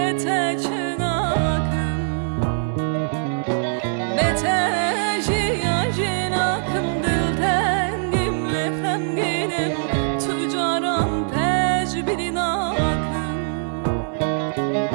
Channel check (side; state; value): left; silent; digital silence